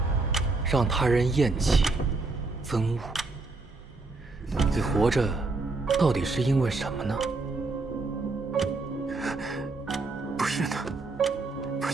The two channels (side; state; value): left; quieter; 3.5 dB